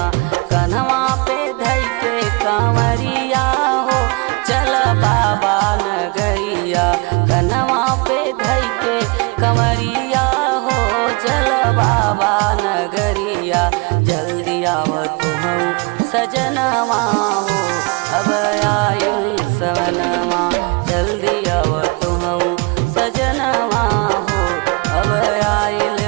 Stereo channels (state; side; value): quieter; left; 29.6 dB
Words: कन्हवा पे धई के कंवरिया हो चल बाबा नगरिया। कन्हवा पे धई के कंवरिया हो चल बाबा नगरिया। जल्दी आव तू सजनवा हो अब आइल सवनवा। जल्दी आव तू सजनवा हो अब